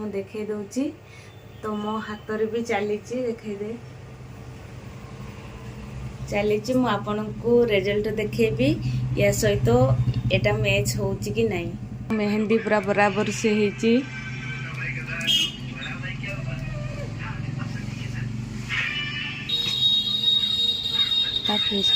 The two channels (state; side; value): identical; both; correlation 1.00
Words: देखे दउची तो मो हाथ रे भी चली देखे दे चली मु आपन को रिजल्ट देखेबी या सहित एटा मैच होची कि नहीं। मेहंदी पूरा बराबर से हेची